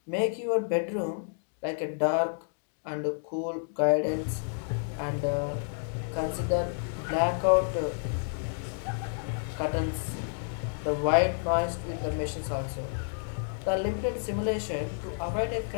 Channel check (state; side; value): silent; right; digital silence